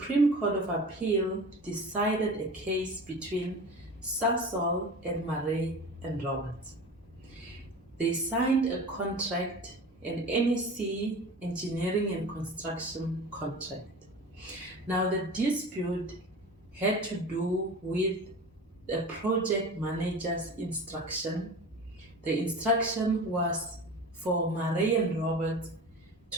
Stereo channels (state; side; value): normal; both; correlation 0.35